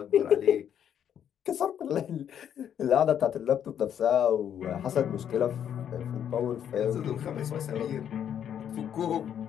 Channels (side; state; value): right; quieter; 9.2 dB